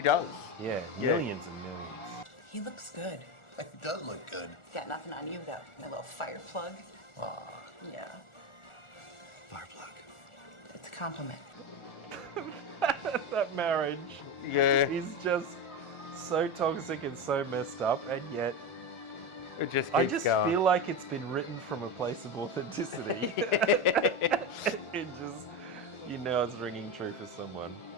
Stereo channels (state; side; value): late; right; 1.4 ms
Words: does. Yeah, millions and millions. He looks good. He does look good. Got nothing on you, though. My little fire plug. Aw. Yeah. Fire plug. It's a compliment. That marriage. Yeah. Is just so toxic and so messed up, and yet it just keeps I just going. feel like it's been written from a place of authenticity. It just, you know, it's ringing true for someone.